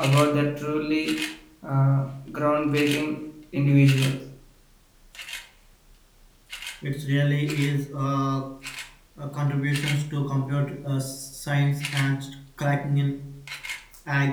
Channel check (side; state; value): both; identical; correlation 1.00